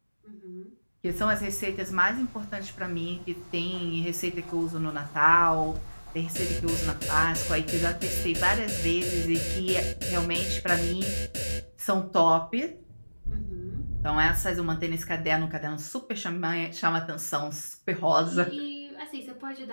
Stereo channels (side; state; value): both; inverted; correlation -1.00